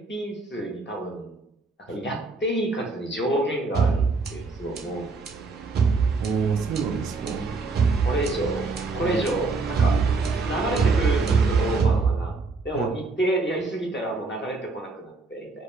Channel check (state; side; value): quieter; left; 3.7 dB